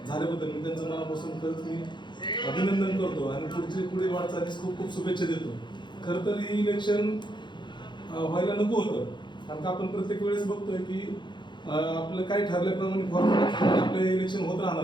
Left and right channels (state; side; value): late; right; 0.22 ms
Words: मी त्यांचं मनापासून खरंच मी अभिनंदन करतो आणि पुढील वाटचालीस खूप खूप शुभेच्छा देतो. खरं तर हे इलेक्शन व्हायला नको होतं, कारण का आपण प्रत्येक वेळेस बघतोय की आपलं काही ठरल्याप्रमाणे फॉर्म्युला आपले इलेक्शन होत राहणार